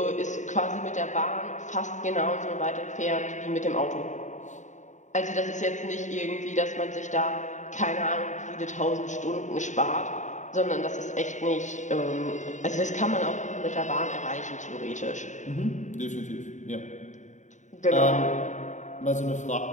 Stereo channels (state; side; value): late; right; 0.35 ms